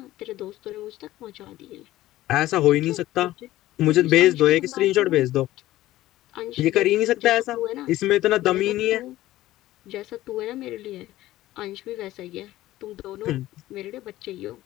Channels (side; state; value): right; quieter; 15.7 dB